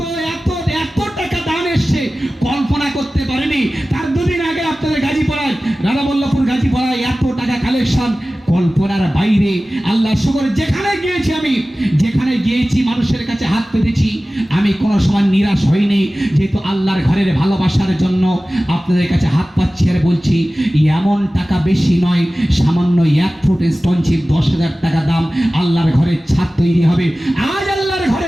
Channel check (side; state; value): both; normal; correlation 0.96